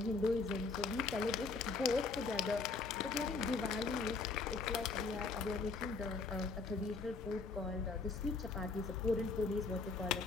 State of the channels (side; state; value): right; quieter; 4.2 dB